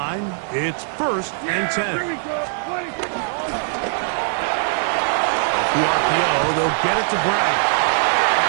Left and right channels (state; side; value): silent; left; digital silence